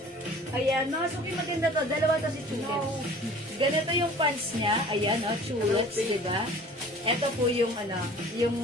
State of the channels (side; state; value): both; normal; correlation 0.46